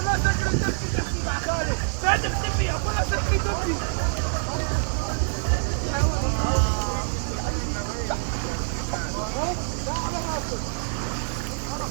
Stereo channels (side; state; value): left; silent; digital silence